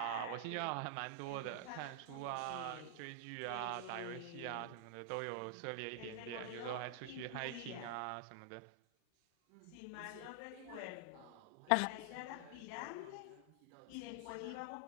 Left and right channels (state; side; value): different; both; correlation -0.01